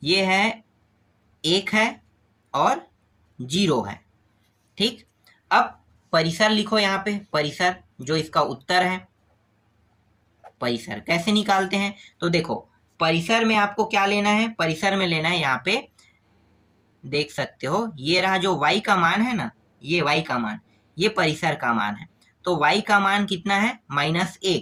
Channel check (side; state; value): both; identical; correlation 1.00